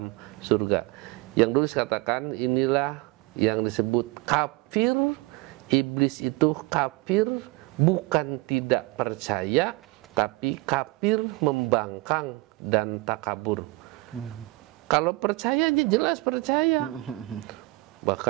surga. Yang dulu katakan, inilah yang disebut kafir. Iblis itu kafir bukan tidak percaya, tapi kafir membangkang dan takabur. Kalau percaya, jelas percaya.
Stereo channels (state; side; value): quieter; left; 22.9 dB